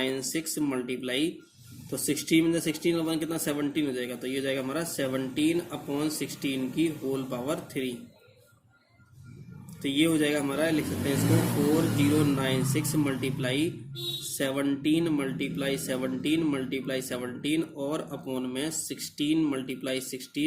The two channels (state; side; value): identical; both; correlation 1.00